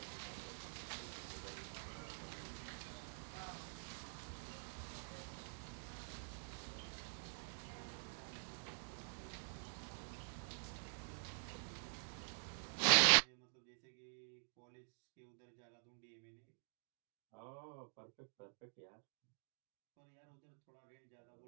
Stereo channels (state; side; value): silent; left; digital silence